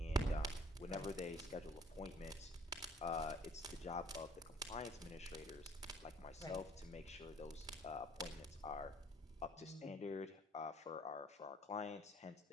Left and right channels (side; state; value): both; normal; correlation 0.57